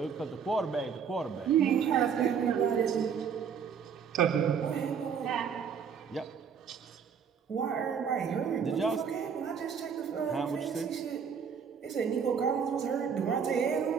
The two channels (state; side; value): quieter; left; 6.9 dB